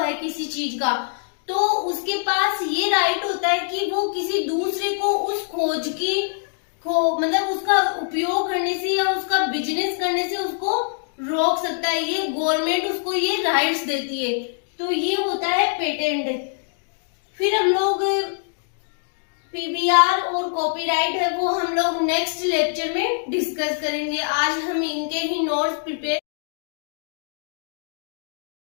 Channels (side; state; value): right; silent; digital silence